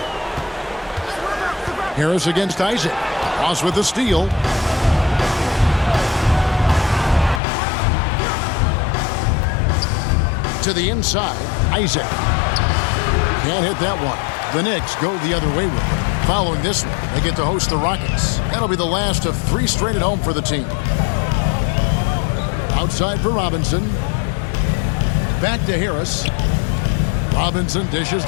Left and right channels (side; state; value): right; drops out; at 7.4 s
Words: Harris against Isaac. Ross with the steal. To the inside, Isaac. Can't hit that one. The Knicks go the other way with it. Following this one, they get to host the Rockets. That'll be the last of 3 straight at home for the team. Outside for Robinson. Back to Harris. Robinson dishes